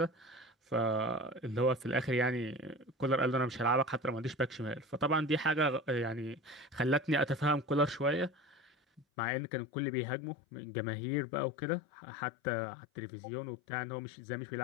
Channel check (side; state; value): right; drops out; at 9.1 s